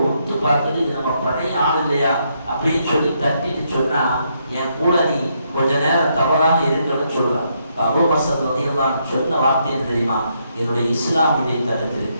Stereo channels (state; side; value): inverted; both; correlation -0.77